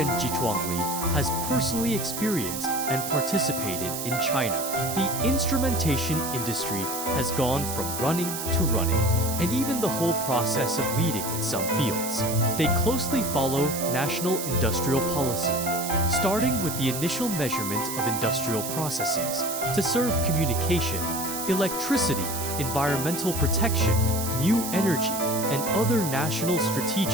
Jiechuangli has personally experienced and participated in China. The instrumentation industry has gone from running to running, and even the whole process of leading in some fields. They closely follow national industrial policy, starting with the initial measurement of industrial processes to serve communication, electricity, environmental protection, new energy, and other national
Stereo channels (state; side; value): noise; right; hiss, 5 dB below the sound